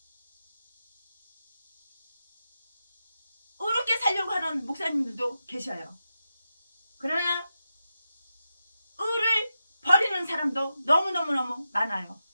이렇게 살려고 하는 목사님들도 계셔요. 그러나 의를 버리는 사람도 너무너무 많아요.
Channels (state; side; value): inverted; both; correlation -0.90